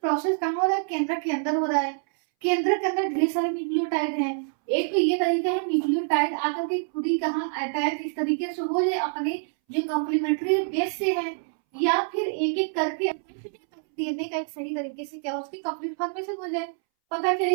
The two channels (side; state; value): left; silent; 61 dB below the other